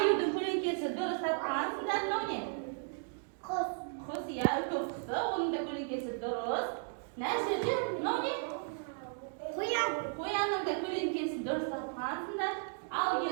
көлеңкесі дұрыс тапқансыңдар. Мынау не? Құс, иә, үлкен құсы. Оның да көлеңкесі дұрыс. Мына жерде мынау не? Қоянның да көлеңкесі дұрыс тапқансыңдар. Ал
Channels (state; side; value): silent; left; 54 dB below the other